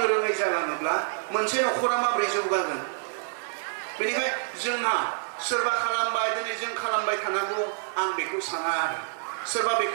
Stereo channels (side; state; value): left; silent; digital silence